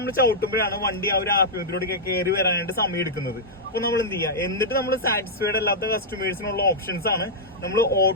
ചവിട്ടുമ്പോഴാണ് വണ്ടി ആ ഒരു RPM കയറി വരാനായിട്ട് സമയം എടുക്കുന്നത്. അപ്പൊ നമ്മൾ എന്ത് ചെയ്യുക, എന്നിട്ട് നമ്മൾ സാറ്റിസ്ഫൈഡ് അല്ലാത്ത കസ്റ്റമേഴ്സിനുള്ള ഓപ്ഷൻസ് ആണ് നമ്മൾ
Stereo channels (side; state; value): both; normal; correlation -0.07